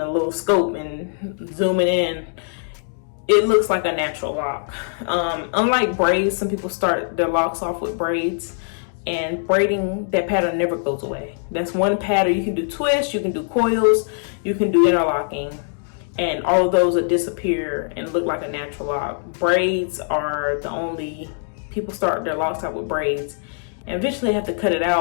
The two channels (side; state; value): right; silent; digital silence